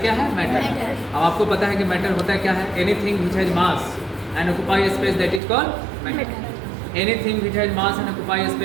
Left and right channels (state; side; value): drops out; left; at 5.4 s